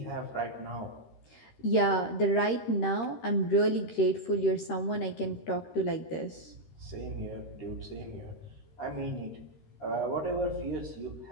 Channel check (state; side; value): late; right; 13 ms